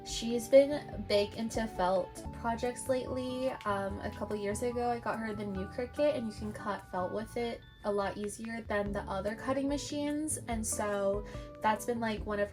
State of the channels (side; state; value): both; identical; correlation 1.00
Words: She's been big into felt projects lately. A couple years ago I got her the new Cricut, and you can cut felt with it a lot easier than the other cutting machines, and so that's been like one of